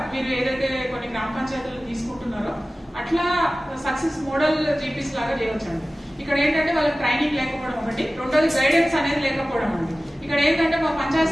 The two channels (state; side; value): normal; both; correlation 0.96